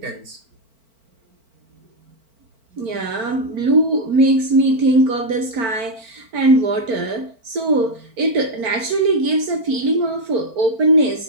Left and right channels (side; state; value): left; late; 4.4 ms